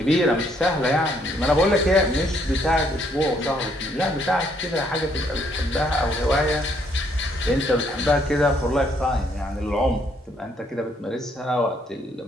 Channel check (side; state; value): both; normal; correlation 0.69